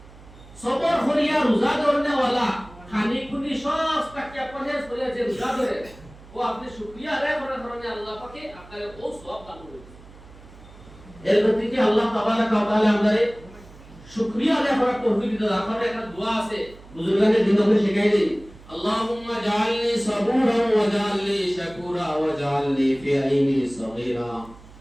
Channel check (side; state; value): right; noise; hum, 21 dB below the sound